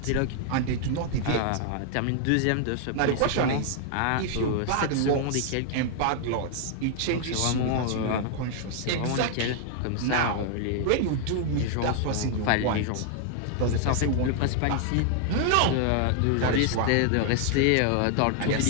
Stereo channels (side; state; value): both; different; correlation 0.00